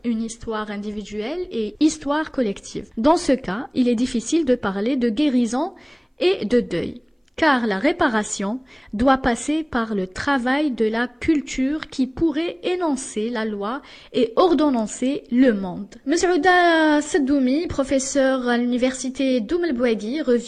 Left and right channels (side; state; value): both; identical; correlation 1.00